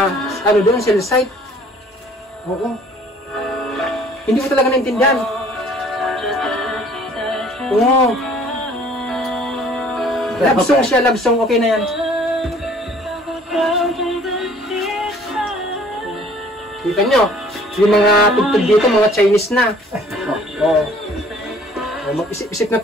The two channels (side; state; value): both; normal; correlation 0.55